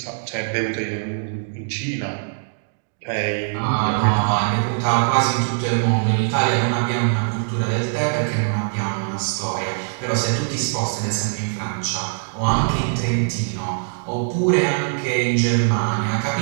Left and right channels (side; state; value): left; silent; digital silence